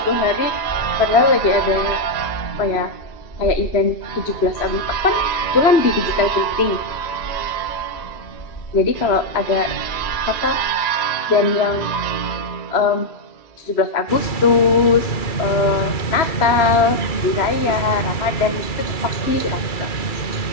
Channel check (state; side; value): late; right; 3.0 ms